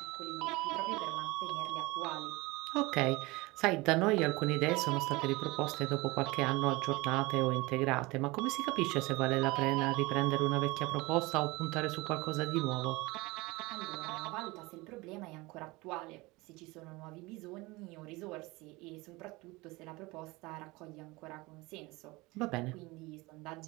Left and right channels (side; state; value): left; quieter; 22.8 dB